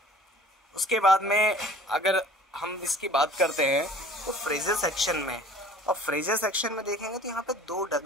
उसके बाद में अगर हम इसकी बात करते हैं तो फ्रीजर सेक्शन में, और फ्रीजर सेक्शन में देखेंगे तो यहाँ पे 2 डक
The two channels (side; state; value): both; normal; correlation 0.47